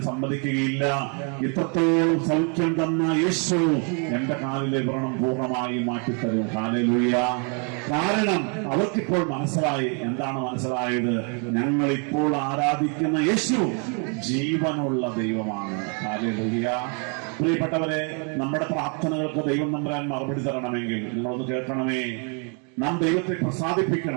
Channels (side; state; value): left; quieter; 37.8 dB